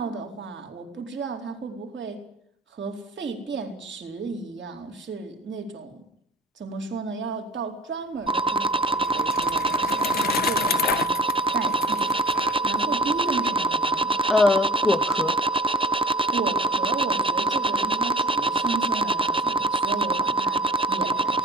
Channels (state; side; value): normal; both; correlation 0.42